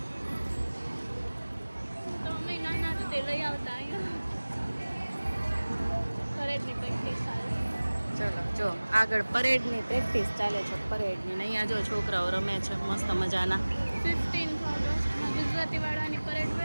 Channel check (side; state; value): both; inverted; correlation -1.00